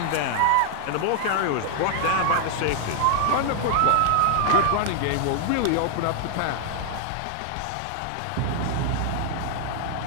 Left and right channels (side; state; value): both; different; correlation 0.00